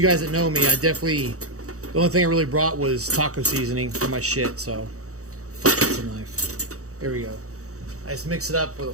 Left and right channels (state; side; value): late; left; 0.65 ms